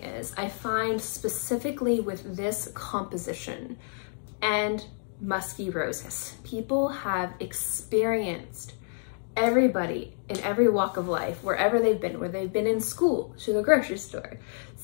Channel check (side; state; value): right; silent; 59 dB below the other